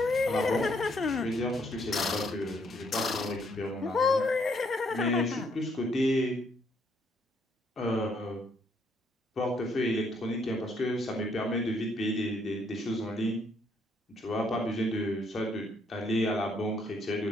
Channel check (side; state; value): both; normal; correlation 0.70